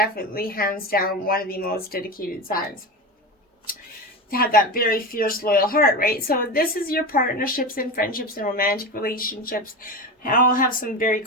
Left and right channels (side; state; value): both; normal; correlation 0.23